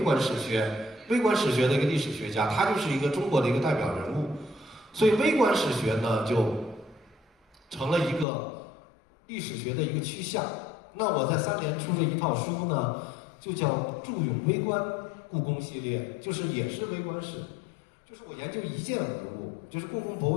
史学的一个历史学家，他就是一个中国的一个代表人物。所以微观史学呢就成了一个历史学的一个趋向。那我在3联出这一套书呢，就叫《著咏微观故宫系列》，就是也是微观史，就是我研究一件文物，就是故宫博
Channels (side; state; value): right; drops out; at 8.2 s